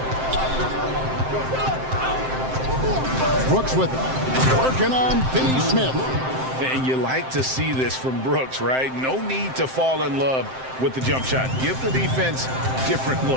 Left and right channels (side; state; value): left; late; 7.7 ms